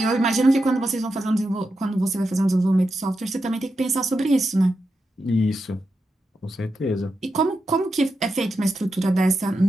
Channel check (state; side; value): normal; both; correlation 0.87